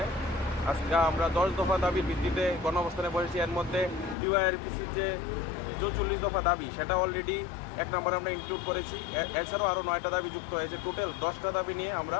আজকে আমরা 10 দফা দাবির ভিত্তিতে গণঅবস্থানে বসেছি। এর মধ্যে ডিওআইআরবিসির যে 44 দফা দাবি সেটা অলরেডি 1 নম্বরে আমরা ইনক্লুড করেছি। এছাড়াও আরও 9টা দাবি যুক্ত হয়েছে। টোটাল 10টা দাবি নিয়ে আমরা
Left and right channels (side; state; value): right; drops out; at 4.2 s